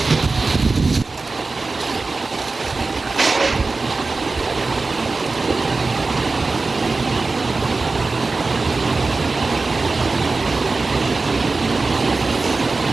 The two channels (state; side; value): quieter; left; 3.8 dB